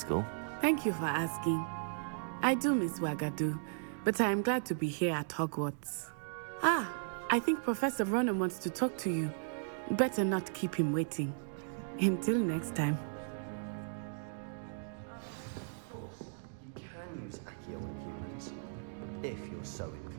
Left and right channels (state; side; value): silent; left; digital silence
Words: Thank you for asking. I do miss Wagadu, but I am glad to be here at Hogwarts. I think Professor Ronen wants to talk to you. Better not keep him waiting. Until next time. Of course, you can use Accio on humans, if you're so